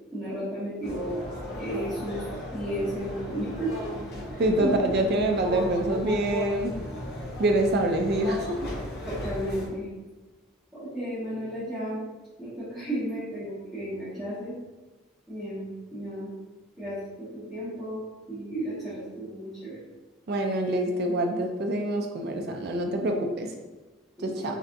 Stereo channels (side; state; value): both; normal; correlation 0.42